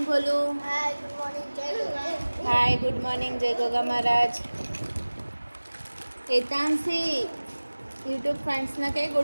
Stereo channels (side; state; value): both; inverted; correlation -1.00